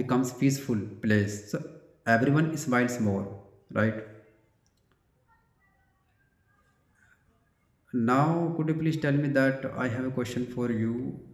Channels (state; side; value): identical; both; correlation 1.00